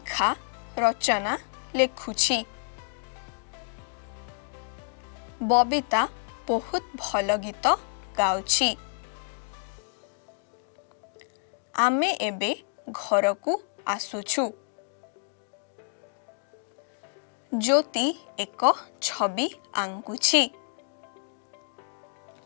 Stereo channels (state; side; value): silent; right; 59 dB below the other